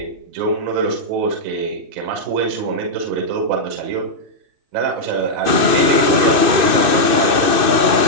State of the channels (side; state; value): left; late; 2.6 ms